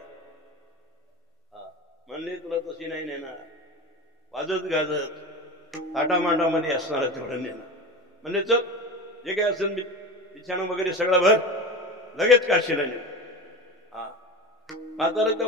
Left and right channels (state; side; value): normal; both; correlation 0.28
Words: म्हणले तुला तशी नाही नेणार, वाजत गाजत थाटामाटामध्ये असणार तेवढं नेणार. म्हणले चल जे काय असेल बिछाणा वगैरे सगळं भर, लगेच काशीला ने. म्हातारा